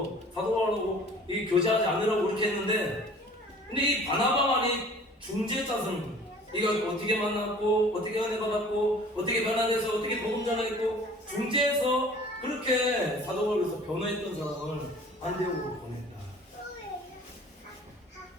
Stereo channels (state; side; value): normal; both; correlation 0.48